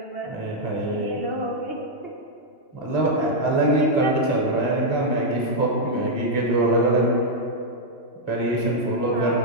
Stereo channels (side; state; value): right; late; 2.4 ms